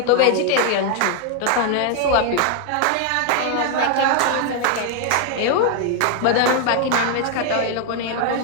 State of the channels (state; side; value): different; both; correlation 0.00